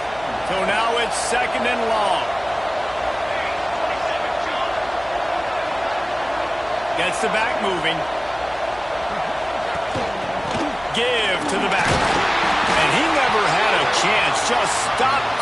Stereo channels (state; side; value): noise; left; hum, 21 dB below the sound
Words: So now it's 2nd and long. Gets the back moving. Give to the back. And he never had a chance. Just stopped